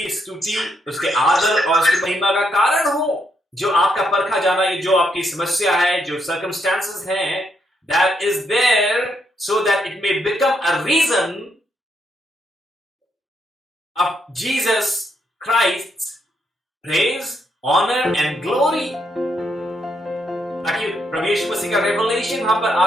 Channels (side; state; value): both; normal; correlation 0.77